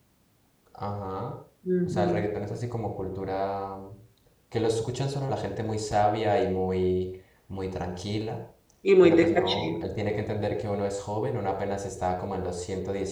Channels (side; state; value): both; identical; correlation 1.00